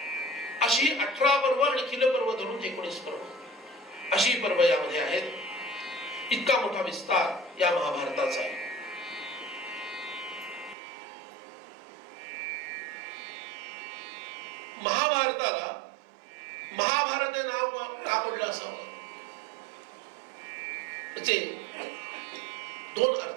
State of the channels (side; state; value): left; drops out; at 10.8 s